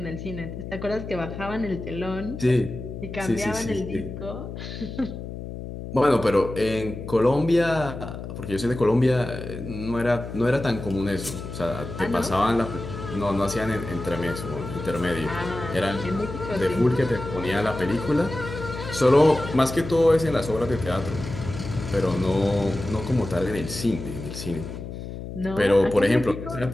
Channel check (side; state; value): left; noise; hum, 9 dB below the sound